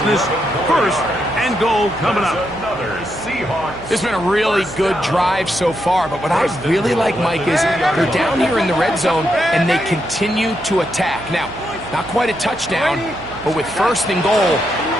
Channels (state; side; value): noise; right; hum, 18 dB below the sound